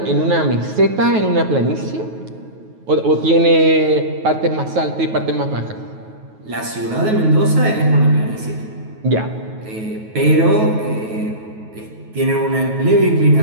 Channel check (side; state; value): left; late; 9.3 ms